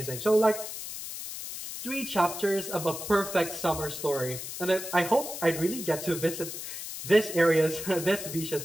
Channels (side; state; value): left; noise; hiss, 8 dB below the sound